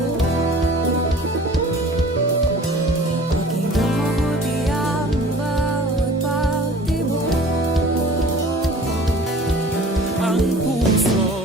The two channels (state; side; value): normal; both; correlation 0.46